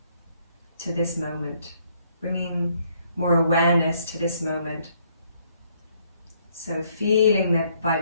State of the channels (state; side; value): inverted; both; correlation -0.68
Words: to this moment, bringing more awareness to this moment. So feeling the